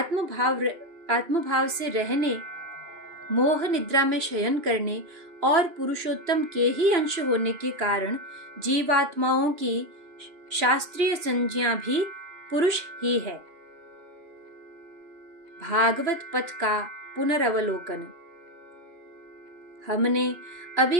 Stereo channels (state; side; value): late; left; 2.9 ms